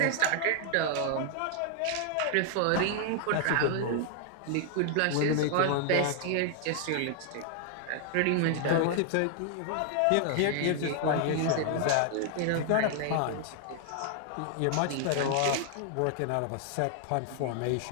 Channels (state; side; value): different; both; correlation 0.00